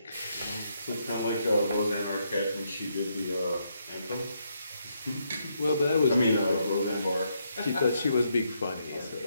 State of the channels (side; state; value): both; inverted; correlation -0.77